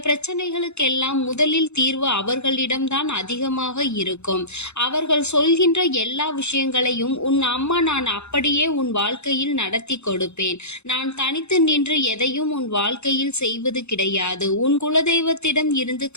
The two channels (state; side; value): late; right; 0.81 ms